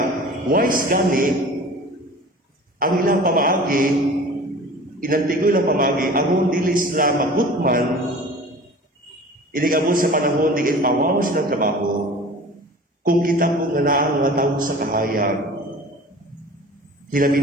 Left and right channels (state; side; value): normal; both; correlation 0.41